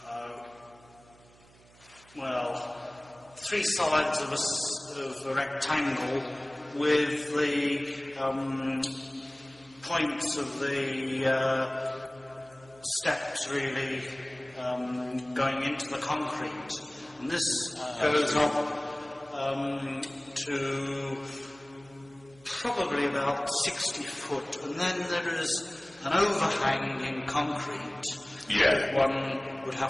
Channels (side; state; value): right; noise; hum, 26 dB below the sound